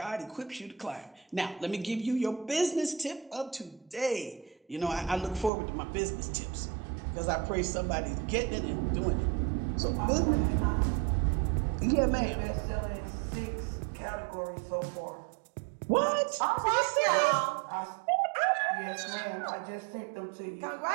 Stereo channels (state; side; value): drops out; left; at 5.5 s